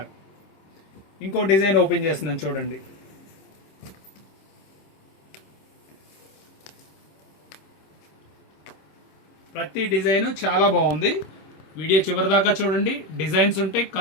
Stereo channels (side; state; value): right; late; 26 ms